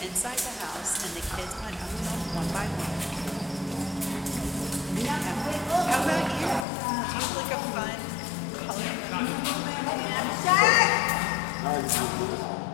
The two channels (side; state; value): right; drops out; at 6.7 s